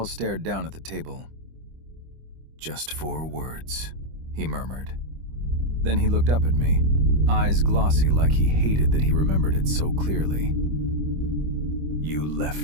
stared down at the table. "Just 4 words," he murmured. Then he looked up at me, eyes glossy like he hated that he remembered it so clearly. "You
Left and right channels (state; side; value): late; left; 25 ms